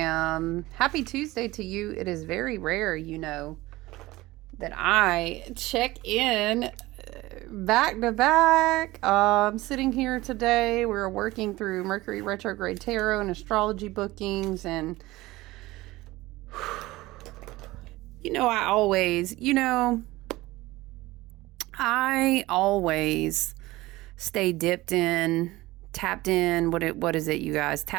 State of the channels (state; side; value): quieter; left; 19.0 dB